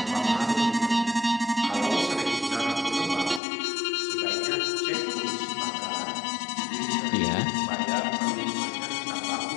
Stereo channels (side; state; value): right; drops out; at 3.4 s